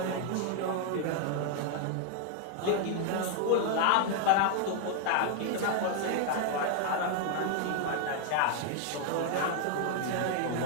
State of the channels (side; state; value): both; different; correlation 0.00